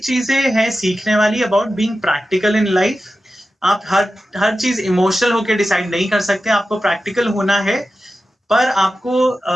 हैं सीखने वाली about being practical in life. आप हर चीज इमोशनल होके डिसाइड नहीं कर सकते, आपको प्रैक्टिकल होना है। पर आपको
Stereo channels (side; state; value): both; normal; correlation 0.92